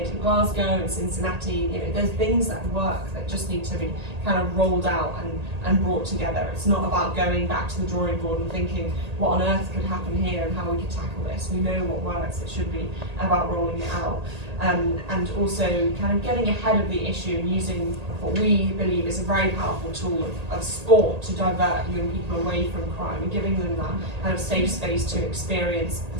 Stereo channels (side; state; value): left; late; 1.8 ms